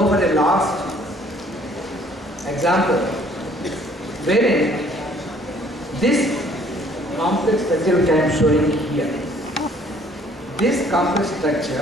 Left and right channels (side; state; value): both; normal; correlation 0.59